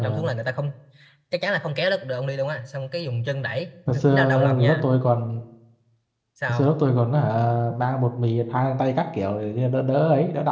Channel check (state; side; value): identical; both; correlation 1.00